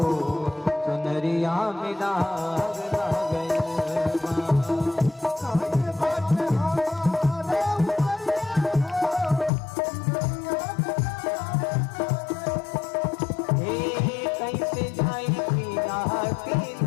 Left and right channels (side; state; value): right; drops out; at 9.5 s